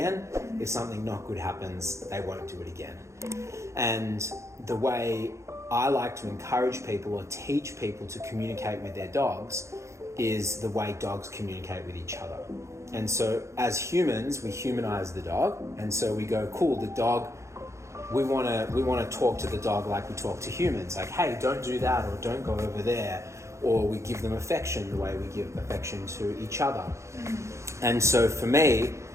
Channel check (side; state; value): left; late; 0.14 ms